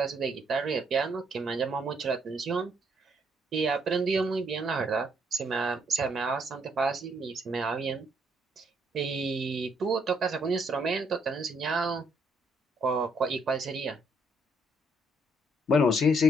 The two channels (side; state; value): both; normal; correlation 0.71